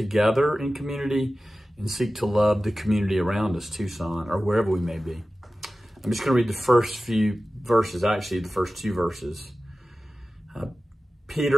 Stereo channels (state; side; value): normal; both; correlation 0.95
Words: in community and seek to love the community around us, Tucson, or wherever we may be. I'm just going to read the first few verses, actually the first two verses.